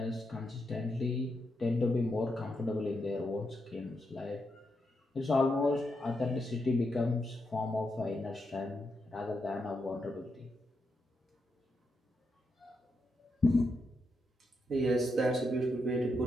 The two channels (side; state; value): both; normal; correlation 0.83